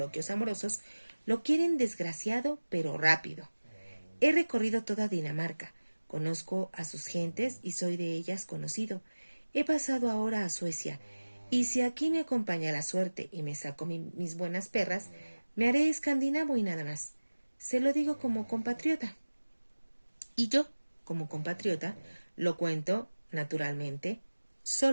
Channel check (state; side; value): inverted; both; correlation -1.00